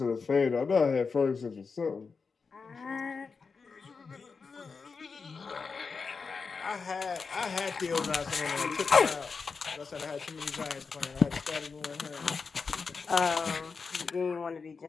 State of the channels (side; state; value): right; quieter; 5.0 dB